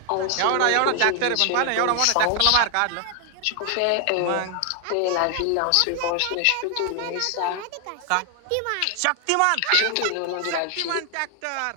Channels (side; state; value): both; different; correlation 0.00